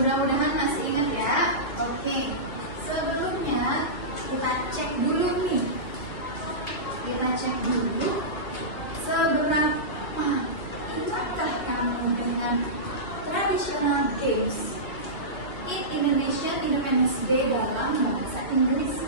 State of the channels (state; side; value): late; right; 2.3 ms